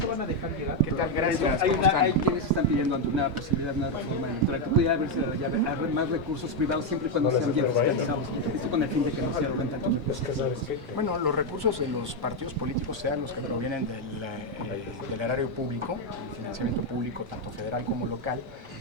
van a dejar llegar? ¿Qué tal? Gracias. Hay quienes están pidiendo ante una posibilidad de una reforma electoral que pudiera haber más recursos privados siempre y cuando sean bien fiscalizados. Esto con el fin de que no se arroguen tanto. Bueno, los recursos de los partidos políticos, sean los que provienen del erario público, financiamiento público, tanto federal como local,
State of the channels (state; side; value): normal; both; correlation 0.03